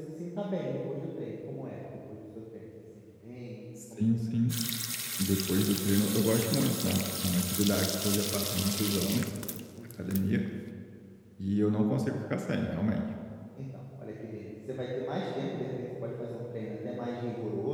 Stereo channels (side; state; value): both; identical; correlation 1.00